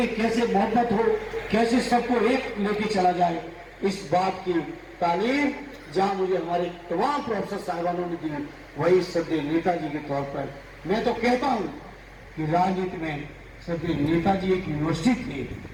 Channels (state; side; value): identical; both; correlation 1.00